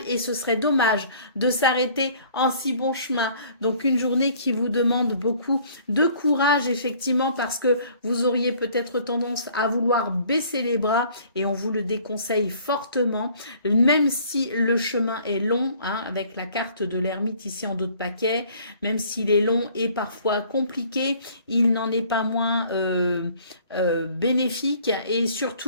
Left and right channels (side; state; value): both; inverted; correlation -0.55